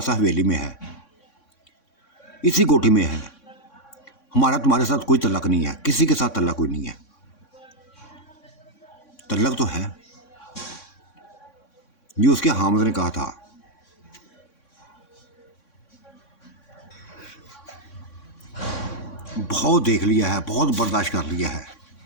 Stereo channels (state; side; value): late; right; 3.6 ms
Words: हवेली में है, इसी कोठी में है। हमारा तुम्हारे साथ कोई तल्लक नहीं है, किसी के साथ तल्लक कोई नहीं है। तल्लक तो है, ये उसके हामिद ने कहा था। बहुत देख लिया है, बहुत बर्दाश्त कर लिया है,